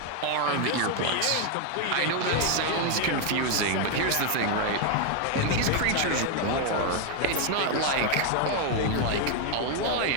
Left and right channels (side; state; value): both; different; correlation 0.01